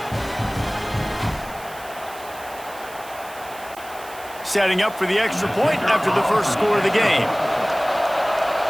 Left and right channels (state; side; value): noise; right; hiss, 18 dB below the sound